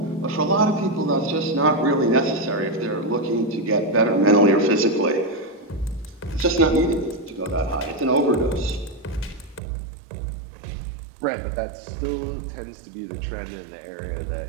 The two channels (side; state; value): left; drops out; at 9.6 s